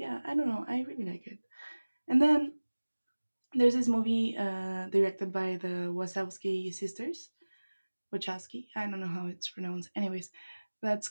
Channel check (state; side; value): inverted; both; correlation -1.00